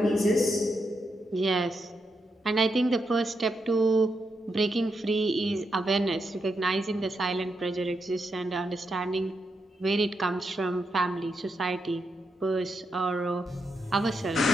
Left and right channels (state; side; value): normal; both; correlation 0.83